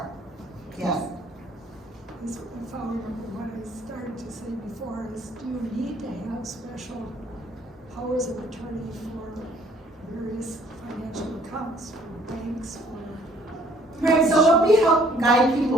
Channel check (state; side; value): normal; both; correlation 0.60